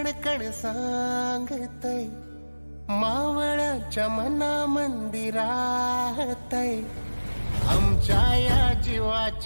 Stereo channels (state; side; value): inverted; both; correlation -1.00